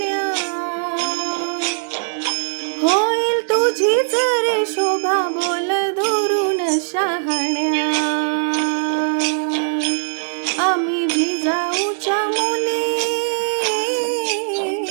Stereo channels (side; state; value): left; silent; digital silence